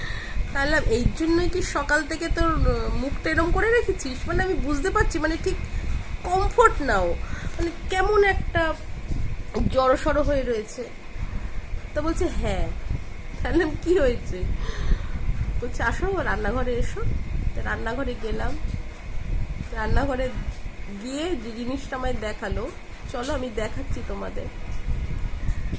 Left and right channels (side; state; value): both; identical; correlation 1.00